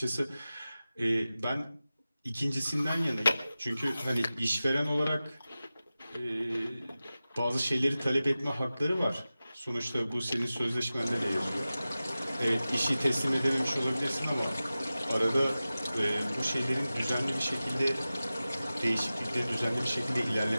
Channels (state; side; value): inverted; both; correlation -0.95